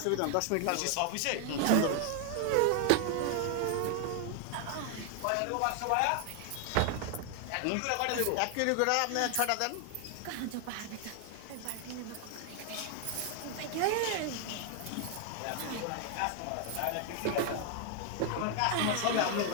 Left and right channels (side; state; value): both; different; correlation 0.00